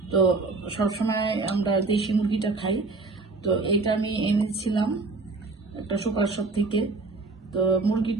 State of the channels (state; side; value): quieter; left; 3.7 dB